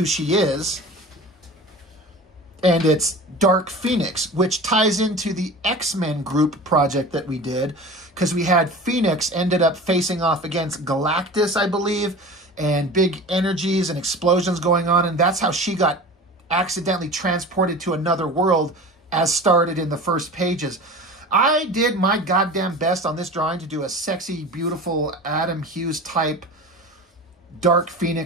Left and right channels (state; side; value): normal; both; correlation 0.36